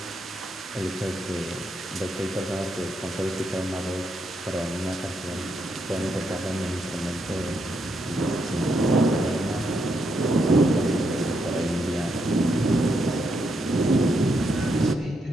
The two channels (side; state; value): both; normal; correlation 0.79